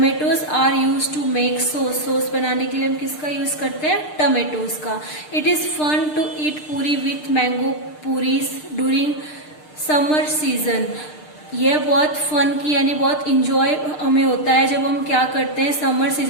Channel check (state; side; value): late; right; 6.6 ms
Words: are use to make sauce, sauce बनाने के लिए हम किसका यूज करते हैं, टमेटोज का। It is fun to eat puri with mango puris during summer season, यह बहुत फन की यानी बहुत इंजॉय हमें होता है जब हम क्या करते हैं, समर